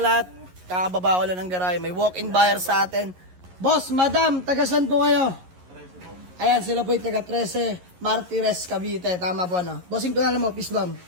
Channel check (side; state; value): left; late; 11 ms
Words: lahat. Kakababa ko lang ng garay. May walk-in buyer sa atin. Boss, madam, tagasan po kayo? Ayan, sila po yung taga 13 Martires, Cavite. Tama po ano? Bossing, pangalan mo, peace bomb.